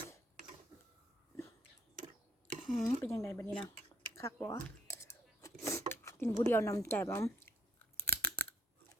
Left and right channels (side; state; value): both; normal; correlation 0.64